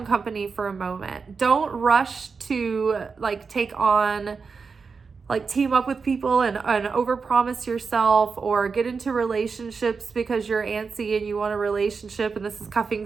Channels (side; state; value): left; quieter; 5.1 dB